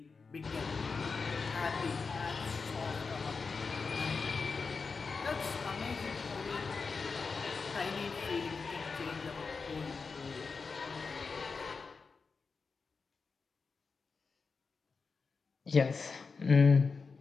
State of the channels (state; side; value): quieter; right; 4.7 dB